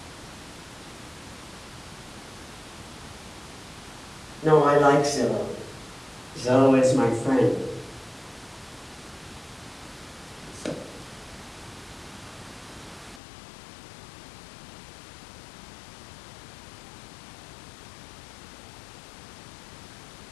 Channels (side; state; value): right; drops out; at 13.2 s